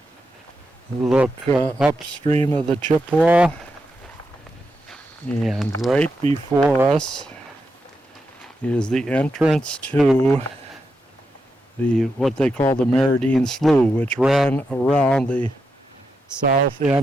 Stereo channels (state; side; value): normal; both; correlation 0.85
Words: look upstream of the Chippewa, and right before us is the entrance to what they call the Meridian Slough, which ran around the south